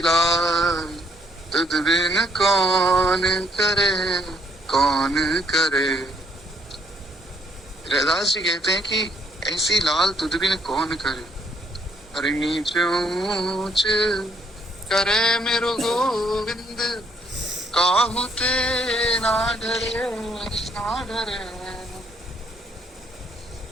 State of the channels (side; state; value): both; normal; correlation 0.68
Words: तुझ बिन कौन करे, कौन करे। हरिदास जी कहते हैं कि ऐसी लाल तुझ बिन कौन करे, अरे नीच ऊंच करे मेरो गोविंद, काहू ते ना डरे, ना डरे।